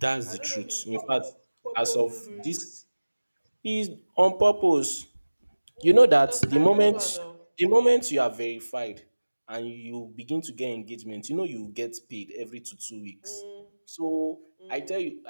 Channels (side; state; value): both; inverted; correlation -1.00